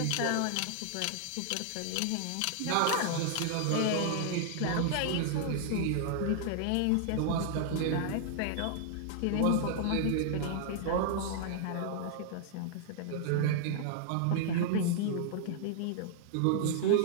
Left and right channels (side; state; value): both; different; correlation -0.01